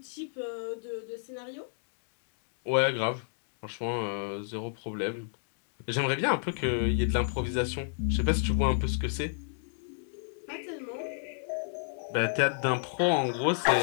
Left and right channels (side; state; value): right; silent; digital silence